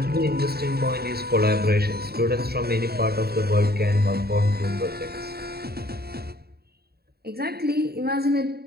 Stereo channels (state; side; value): late; left; 0.46 ms